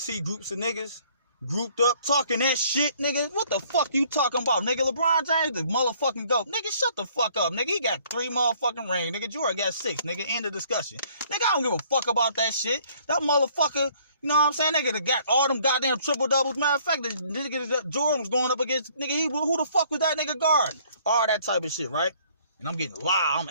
groups of niggas grouped up talking that shit, nigga, what the fuck you talking about? Nigga, LeBron James, the motherfucking GOAT. Nigga, shut the fuck up. Nigga, he got 3 motherfucking rings. Nigga, Jordan got 6. Nigga, end of discussion. Nigga, I don't give a fuck about that shit. That motherfucker, You know what I'm saying? Nigga that got all them goddamn triple doubles. Matter of fact, the nigga that Jordan was going up against, nigga, who the fuck was that nigga guarding? All that type of shit, right? And I'm getting loud. I'm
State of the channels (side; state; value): both; inverted; correlation -0.60